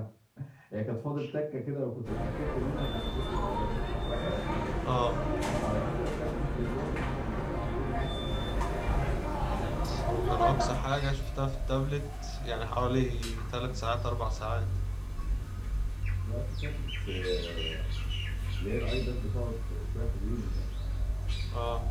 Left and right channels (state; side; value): identical; both; correlation 1.00